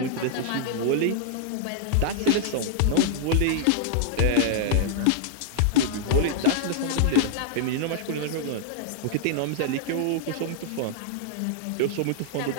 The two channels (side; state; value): both; different; correlation -0.01